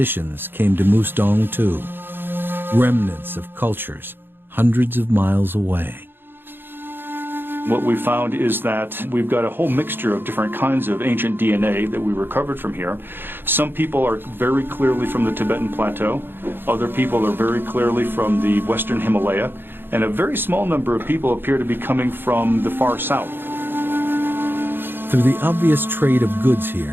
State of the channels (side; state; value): left; late; 0.10 ms